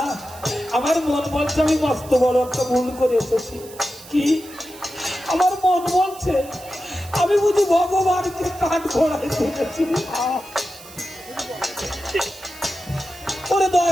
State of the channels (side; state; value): right; noise; hiss, 18 dB below the sound